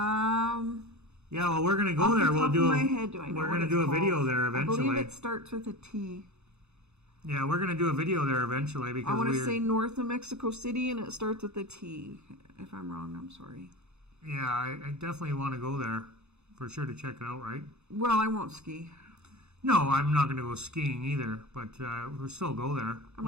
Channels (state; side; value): late; left; 0.81 ms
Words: well, we're going to go there. We're going to do a video there eventually. I believe it starts with a T. Yeah, we're going to do a video there eventually because I want to say north of Mexico City, and it starts with a T. If I'm wrong, I'm sorry. Yeah, I definitely want to go there for sure to check it out, right? Well, I won't ski. No, I'm not going to go skiing either, but we'll still go there.